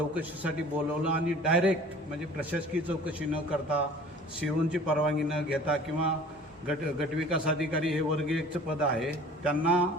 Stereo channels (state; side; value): normal; both; correlation 0.47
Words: बोलवलं आणि डायरेक्ट म्हणजे प्रशासकीय चौकशी न करता सीओची परवानगी न घेता किंवा गटविकास अधिकारी हे वर्ग 1चं पद आहे त्यांना